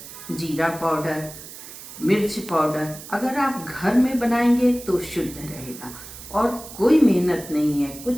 जीरा पाउडर, मिर्च पाउडर। अगर आप घर में बनाएंगे तो शुद्ध रहेगा और कोई मेहनत नहीं है,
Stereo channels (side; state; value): right; noise; hiss, 14 dB below the sound